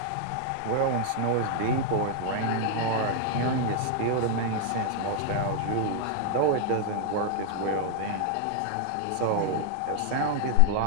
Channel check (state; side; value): different; both; correlation 0.00